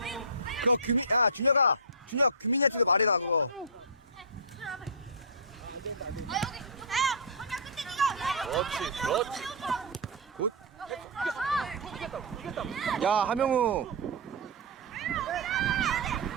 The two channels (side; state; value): both; normal; correlation -0.15